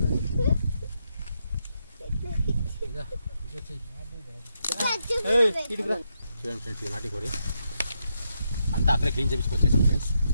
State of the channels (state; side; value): inverted; both; correlation -0.81